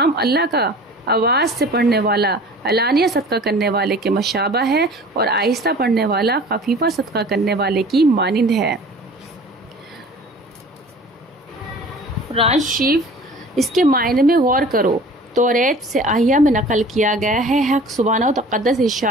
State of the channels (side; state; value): both; normal; correlation 0.45